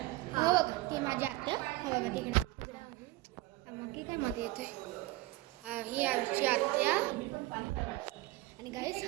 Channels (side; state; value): left; quieter; 19.0 dB